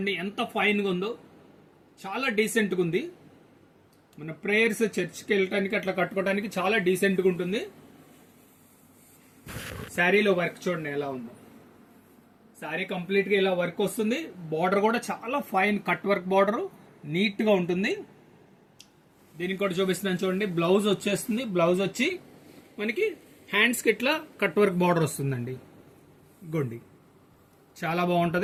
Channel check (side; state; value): both; identical; correlation 1.00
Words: ఎంత ఫైన్ గా ఉందో, చాలా డీసెంట్ గా ఉంది. మన ప్రేయర్స్, చర్చ్కి వెళ్ళటానికి అట్లా కట్టుకోవడానికి చాలా డీసెంట్ గా ఉంటుంది. శారీలో వర్క్ చూడండి ఎలా ఉందో. శారీ కంప్లీట్ గా ఇలా వర్క్ వస్తుంది. బార్డర్ కూడా చాలా fine cut work border, neat గా ఉంటుంది. దీనికి కూడా చూపిస్తున్నాను చూడండి. బ్లౌజ్ వచ్చేస్తుంది. బ్లౌజ్ వచ్చి మనకి హ్యాండ్స్ కి ఇట్లా కట్ వర్క్ బార్డర్ వస్తుందండి. గొండి చాలా